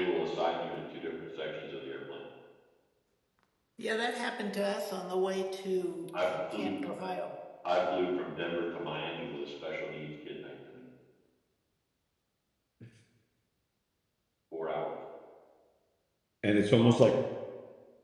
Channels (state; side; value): identical; both; correlation 1.00